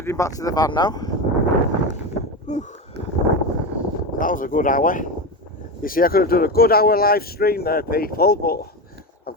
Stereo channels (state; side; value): normal; both; correlation 0.19